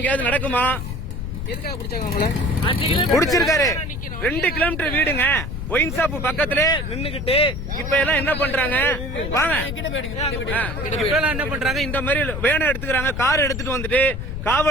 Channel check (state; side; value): noise; left; rumble, 6 dB below the sound